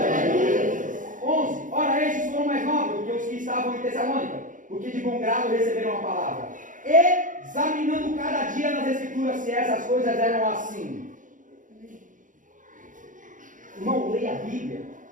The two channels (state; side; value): late; left; 0.38 ms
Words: 11. Ora, estes foram mais nobres do que os que estavam em Tessalônica, porque de bom grado receberam a palavra. Examinando cada dia nas Escrituras se essas coisas eram assim. Irmão, leia a Bíblia.